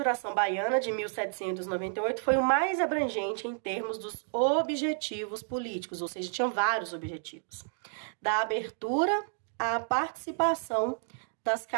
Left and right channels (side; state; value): left; silent; digital silence